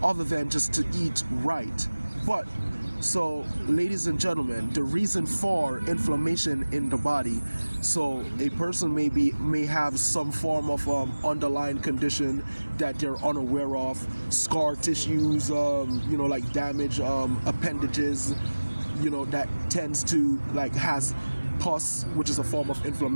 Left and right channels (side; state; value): both; inverted; correlation -1.00